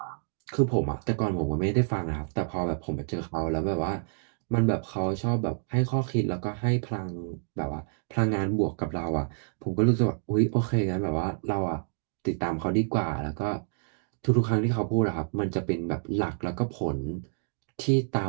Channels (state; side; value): silent; left; digital silence